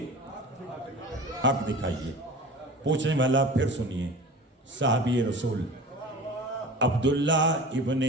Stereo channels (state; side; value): normal; both; correlation 0.37